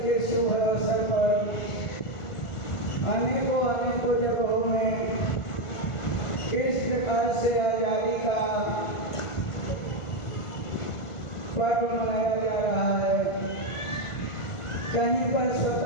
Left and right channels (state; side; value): late; right; 1.5 ms